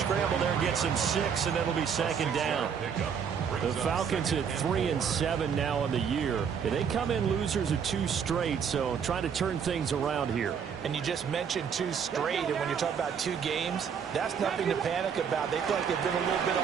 there gets him 6, and it'll be 2nd down. The Falcons at 3 and 7 now on the year. They come in losers of 2 straight, so trying to turn things around here. And you just mentioned 2 straight, and when you're talking about 2 games, that's nothing to panic about. They feel like they've been a little bit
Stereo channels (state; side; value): quieter; left; 7.1 dB